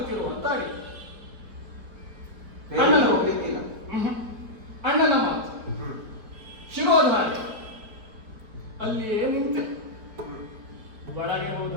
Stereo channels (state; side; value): late; left; 4.4 ms